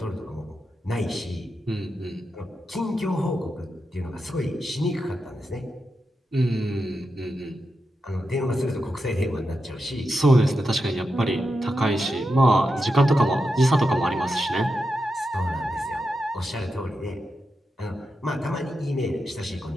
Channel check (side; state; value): both; normal; correlation 0.88